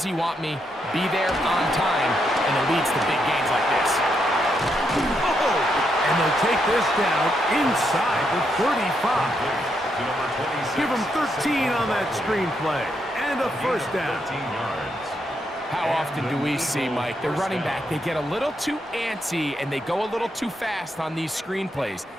he want me? Be there on time, and it leads to big gains like this. And they'll take this down inside the 35. Give them 13 on that screenplay. And a first down. How often do we see, Mike, the running back, they get a little too antsy and they go a little too fast on these screenplays.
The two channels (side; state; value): both; normal; correlation 0.79